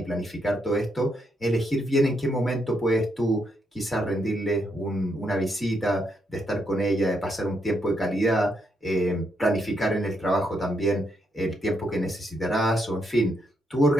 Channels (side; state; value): both; normal; correlation 0.78